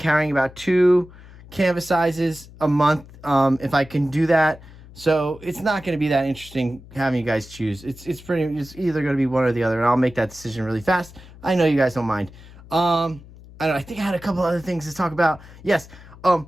about 2 canvas sizes a month, if I can do that. So it's not going to be that interesting having you guys choose. It's either going to be one or the other, and I'll make that decision really fast. I know you guys don't mind. I think I had a couple other things to talk about. Yes.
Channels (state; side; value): noise; left; hum, 20 dB below the sound